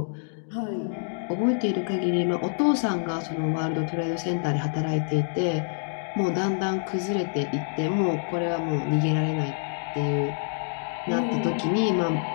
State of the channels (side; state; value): right; silent; digital silence